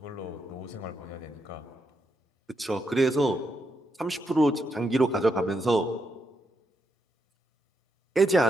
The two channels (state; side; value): normal; both; correlation 0.81